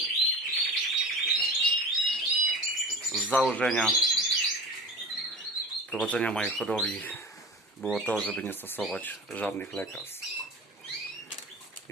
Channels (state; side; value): normal; both; correlation 0.33